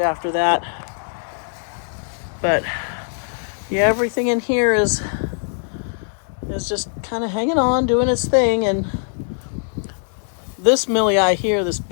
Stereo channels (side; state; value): right; silent; 65 dB below the other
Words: after that. But yeah, everything in here is just kind of hanging on, doing its thing. And this Milii here, this